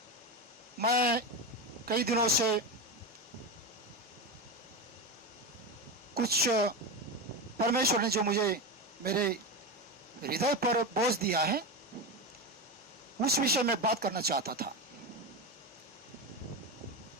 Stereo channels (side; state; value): both; normal; correlation 0.17